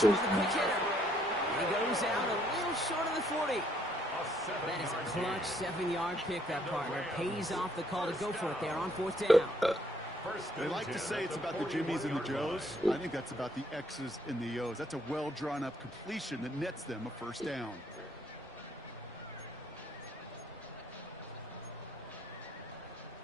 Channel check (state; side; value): normal; both; correlation 0.68